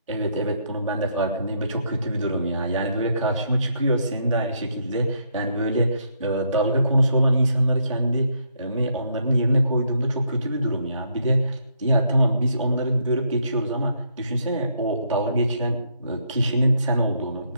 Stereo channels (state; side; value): inverted; both; correlation -0.74